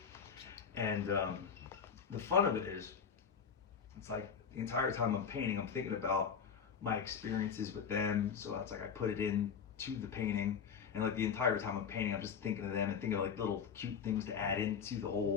and the fun of it is, it's like the entire time I'm painting, I'm thinking about my experiences with them. So it's like I put it into the painting, and like the entire time I'm painting, I'm just thinking of them and thinking of like little cute things to add into the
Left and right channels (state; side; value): quieter; right; 6.7 dB